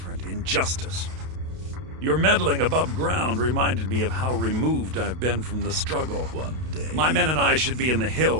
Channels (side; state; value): left; late; 32 ms